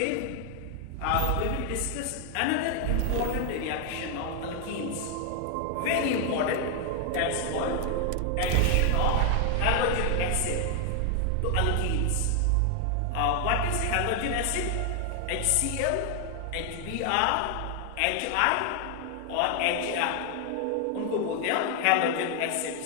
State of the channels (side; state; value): both; different; correlation 0.00